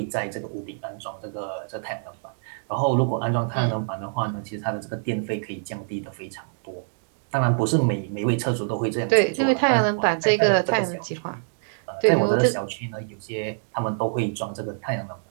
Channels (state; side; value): silent; left; digital silence